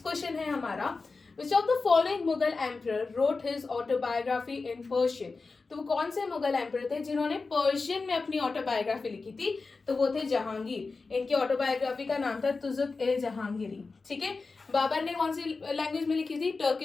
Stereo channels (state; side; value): quieter; right; 4.1 dB